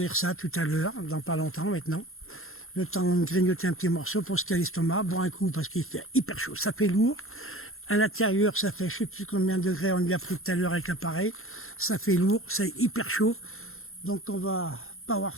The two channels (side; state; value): right; late; 0.61 ms